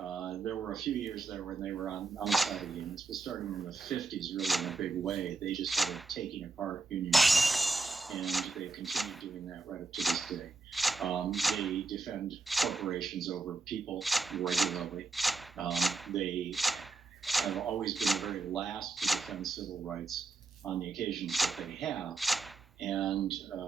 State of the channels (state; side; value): quieter; left; 3.7 dB